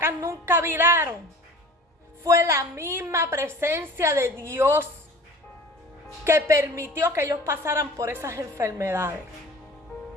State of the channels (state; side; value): normal; both; correlation 0.43